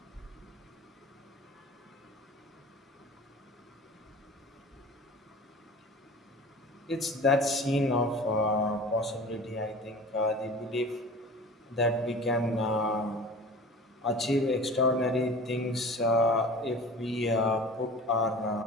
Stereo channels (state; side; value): normal; both; correlation 0.39